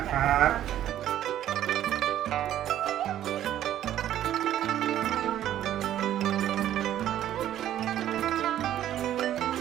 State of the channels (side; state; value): left; quieter; 11.9 dB